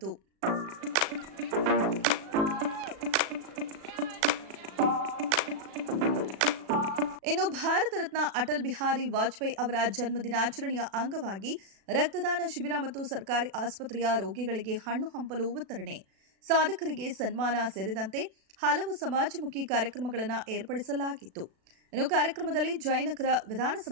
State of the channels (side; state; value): left; late; 36 ms